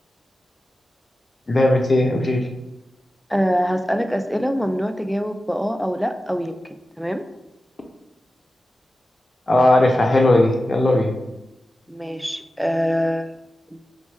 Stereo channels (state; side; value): normal; both; correlation 0.93